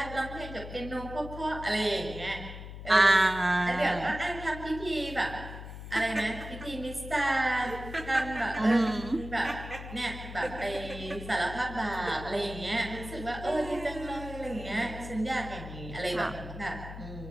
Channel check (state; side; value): noise; left; hum, 11 dB below the sound